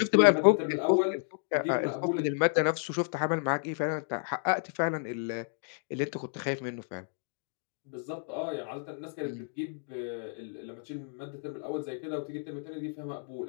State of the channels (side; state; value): right; silent; digital silence